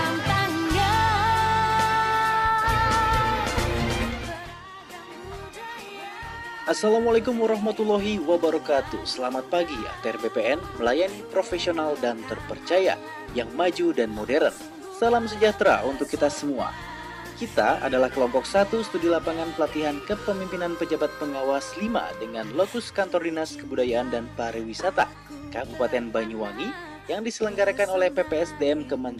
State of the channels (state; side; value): identical; both; correlation 1.00